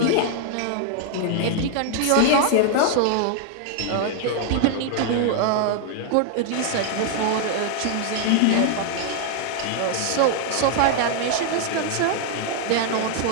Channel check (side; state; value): both; different; correlation 0.00